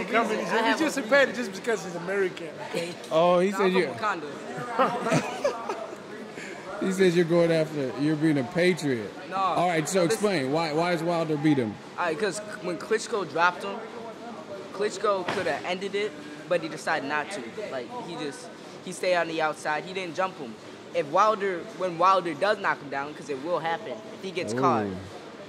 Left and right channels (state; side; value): identical; both; correlation 1.00